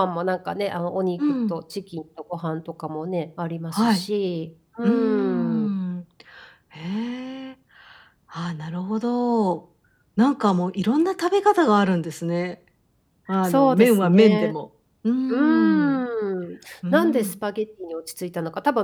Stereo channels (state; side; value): identical; both; correlation 1.00